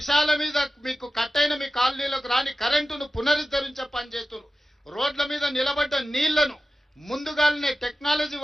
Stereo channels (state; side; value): normal; both; correlation 0.94